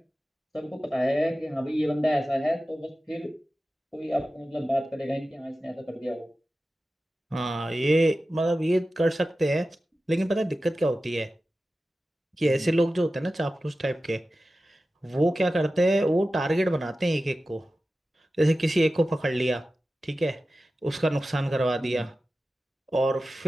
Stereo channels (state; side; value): normal; both; correlation 0.94